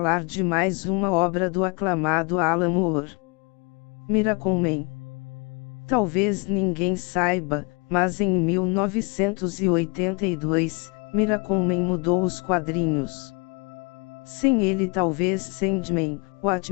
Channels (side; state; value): right; quieter; 32.2 dB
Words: de mais uma obra do aclamado Alan Moore. Miracleman. Talvez ninguém saiba, mas em 1982, Miracleman mudou os quadrinhos. Sem ele talvez Sandman,